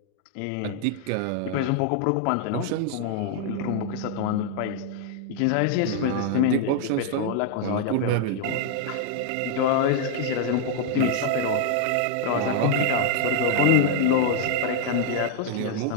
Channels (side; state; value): both; different; correlation 0.00